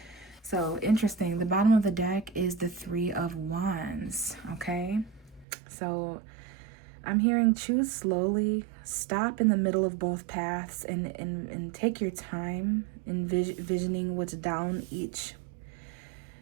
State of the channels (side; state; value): left; drops out; at 5.5 s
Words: So interesting. The bottom of the deck is the Three of Wands, okay? So I'm hearing choose slowly, stop in the middle of both paths, and take your time envisioning what's down each